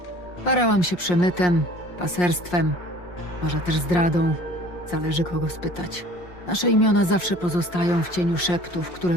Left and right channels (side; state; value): right; late; 5.6 ms